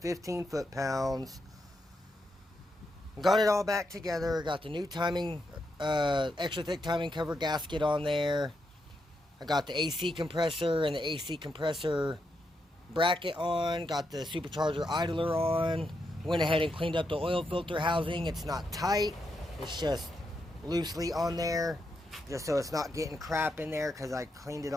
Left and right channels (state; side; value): normal; both; correlation 0.83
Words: foot-pounds. Got it all back together, got the new timing, extra thick timing cover gasket on there. I got the AC compressor and the AC compressor bracket on, got the supercharger idler on. Went ahead and cleaned up the oil filter housing. It's not tight, it's just loosely on there, just so it's not getting crap in there, because I cleaned it